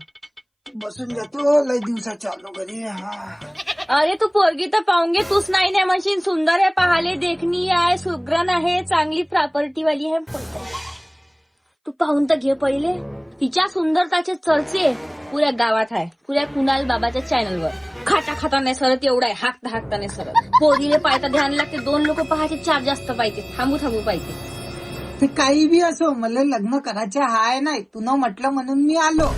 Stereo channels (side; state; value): both; identical; correlation 1.00